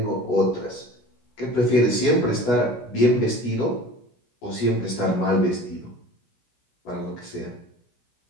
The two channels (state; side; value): late; right; 16 ms